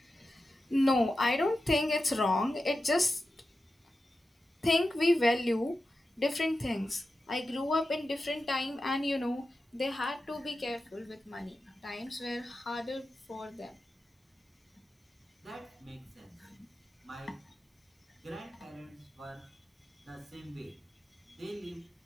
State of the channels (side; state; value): both; normal; correlation 0.91